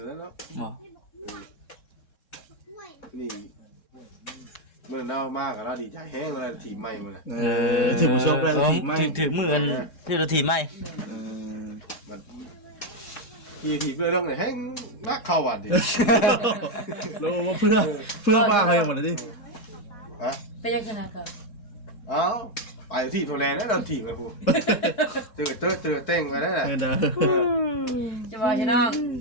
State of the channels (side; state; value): right; late; 3.7 ms